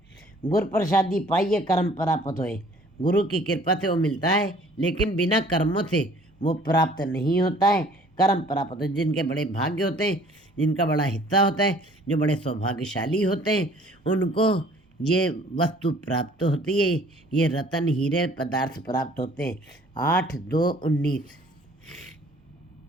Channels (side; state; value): both; normal; correlation 0.54